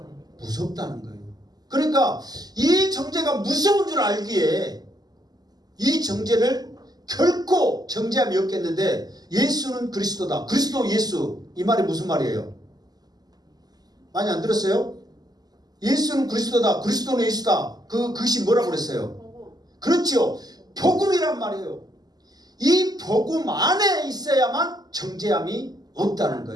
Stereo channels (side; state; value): left; late; 0.19 ms